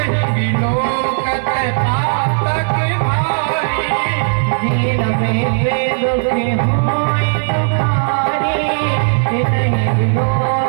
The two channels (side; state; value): left; silent; digital silence